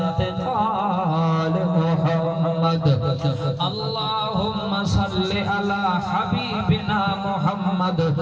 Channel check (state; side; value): identical; both; correlation 1.00